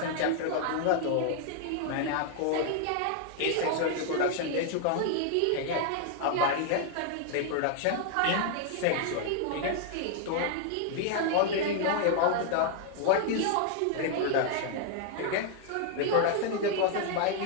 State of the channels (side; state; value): both; different; correlation 0.00